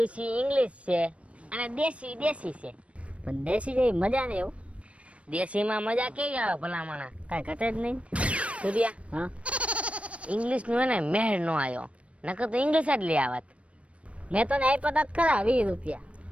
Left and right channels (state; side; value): late; left; 0.063 ms